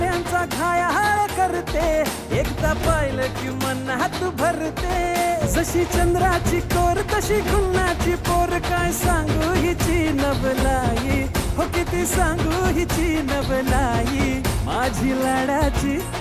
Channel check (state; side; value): identical; both; correlation 1.00